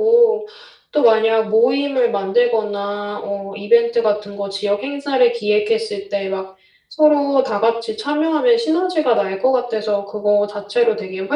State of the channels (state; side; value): identical; both; correlation 1.00